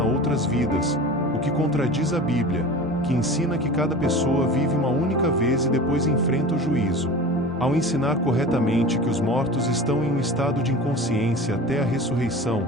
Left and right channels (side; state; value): both; normal; correlation 0.35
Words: a outras vidas, o que contradiz a Bíblia, que ensina que cada pessoa vive uma única vez e depois enfrenta o juízo. Ao ensinar corretamente que os mortos estão em um estado de inconsciência até a ressurreição,